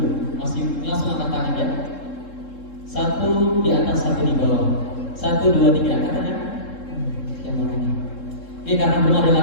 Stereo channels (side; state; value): right; late; 3.7 ms